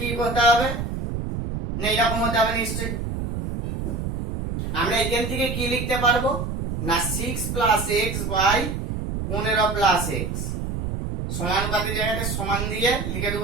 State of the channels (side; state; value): right; noise; rumble, 4 dB below the sound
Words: করতে হবে না, এরকম হতে হবে নিশ্চয়ই। আমরা এখান থেকে কি লিখতে পারবো না, 6 plus x by 15 plus x সমানুপাতির জায়গাতে সমান দিয়ে লিখে